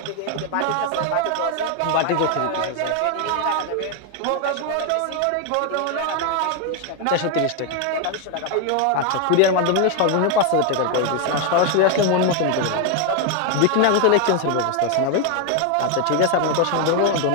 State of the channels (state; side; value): different; both; correlation 0.01